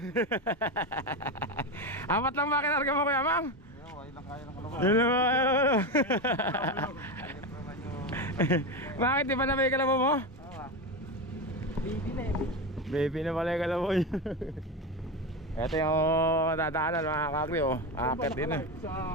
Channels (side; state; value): both; normal; correlation 0.17